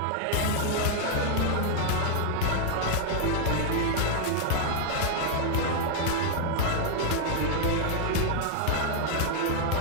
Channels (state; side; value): different; both; correlation -0.01